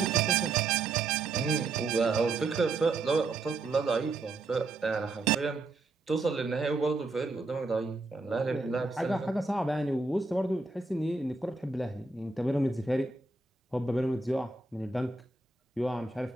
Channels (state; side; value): quieter; left; 3.5 dB